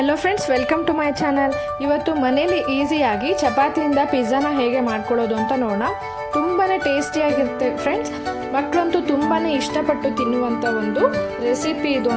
friends, welcome to my channel. ಇವತ್ತು ಮನೇಲಿ ಈಸಿಯಾಗಿ ಚಪಾತಿಯಿಂದ ಪಿಜ್ಜಾನ ಹೇಗೆ ಮಾಡ್ಕೊಳ್ಳೋದು ಅಂತ ನೋಡೋಣ. ತುಂಬಾ ಟೇಸ್ಟಿಯಾಗಿರುತ್ತೆ ಫ್ರೆಂಡ್ಸ್. ಮಕ್ಕಳಂತೂ ತುಂಬಾ ಇಷ್ಟಪಟ್ಟು ತಿನ್ನುವಂಥ ಒಂದು ರೆಸಿಪಿ ಇದು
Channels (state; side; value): identical; both; correlation 1.00